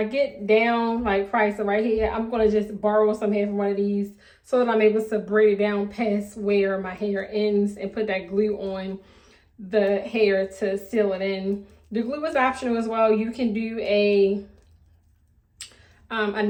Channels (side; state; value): both; identical; correlation 1.00